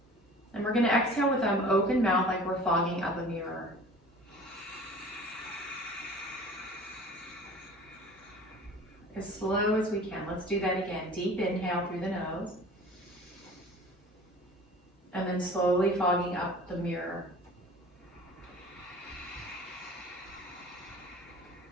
and we're going to exhale with an open mouth like we're fogging up a mirror. As slow as we can. Let's do that again. Deep inhale through the nose. And then slowly fogging up the mirror.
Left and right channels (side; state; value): both; normal; correlation 0.44